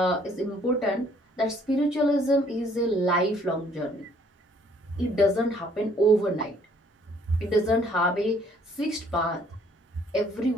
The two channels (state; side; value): normal; both; correlation 0.62